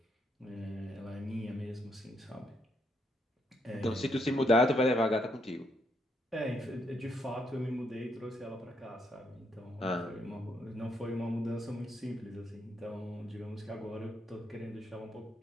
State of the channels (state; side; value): normal; both; correlation 0.75